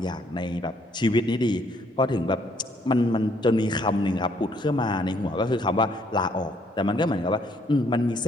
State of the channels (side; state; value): both; normal; correlation 0.66